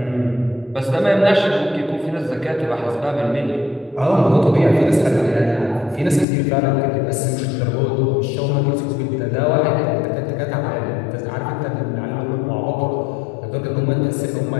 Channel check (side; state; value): right; drops out; at 6.2 s